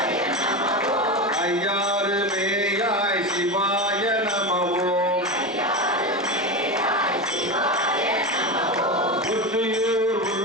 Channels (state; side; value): normal; both; correlation 0.20